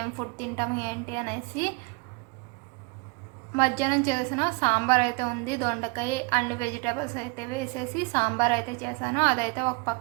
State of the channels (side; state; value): left; quieter; 29.5 dB